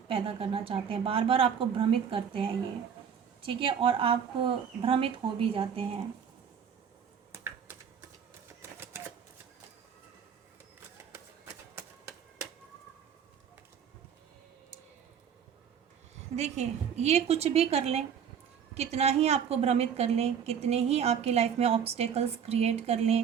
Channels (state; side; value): quieter; left; 7.7 dB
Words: पैदा करना चाहते हैं, बार बार आपको भ्रमित करते हैं ये। ठीक है, और आप भ्रमित हो भी जाते हैं। देखिए, ये कुछ भी कर लें, कितना ही आपको भ्रमित कर लें, कितने ही आपकी लाइफ में ऑब्स्टेकल्स क्रिएट कर